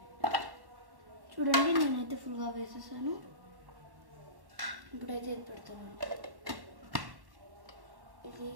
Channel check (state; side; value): late; left; 1.1 ms